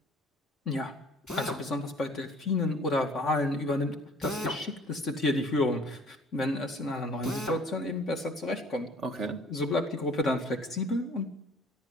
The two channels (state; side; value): normal; both; correlation 0.52